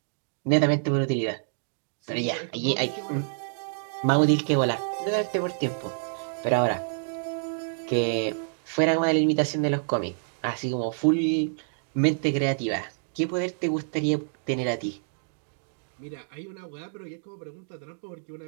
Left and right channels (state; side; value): silent; left; digital silence